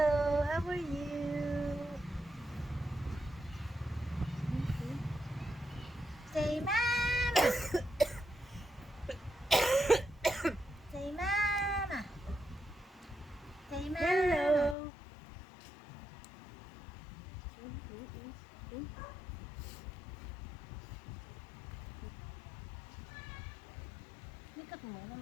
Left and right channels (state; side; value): drops out; right; at 14.8 s